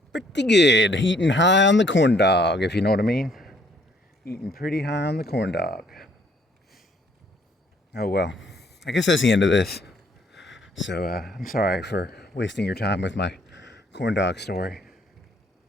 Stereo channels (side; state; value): both; normal; correlation 0.64